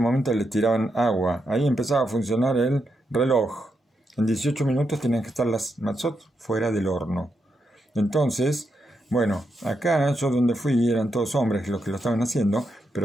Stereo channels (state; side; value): normal; both; correlation 0.83